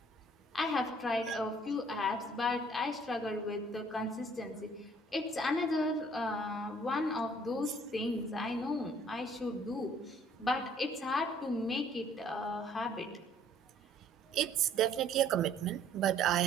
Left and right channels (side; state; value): both; normal; correlation 0.58